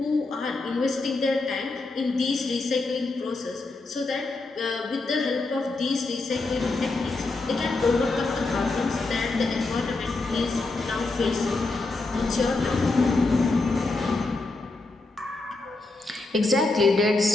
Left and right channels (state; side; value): quieter; right; 3.3 dB